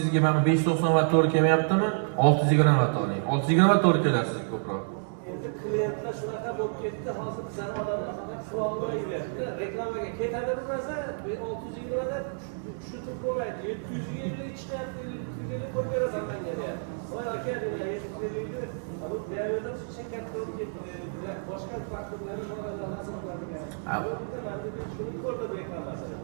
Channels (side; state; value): left; silent; digital silence